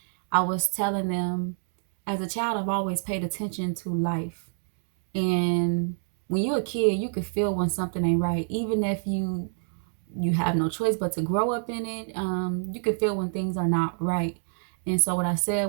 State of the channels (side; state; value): left; silent; digital silence